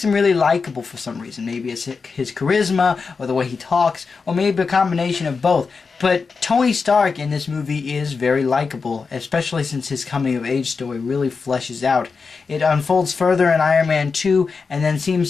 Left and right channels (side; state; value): right; quieter; 4.9 dB